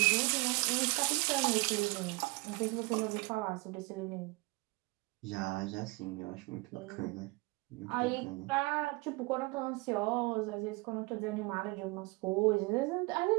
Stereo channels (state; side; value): quieter; left; 26.3 dB